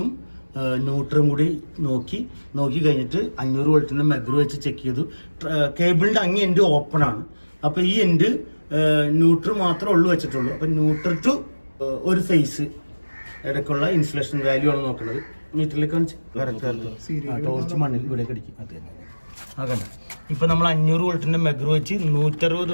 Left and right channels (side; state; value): both; inverted; correlation -1.00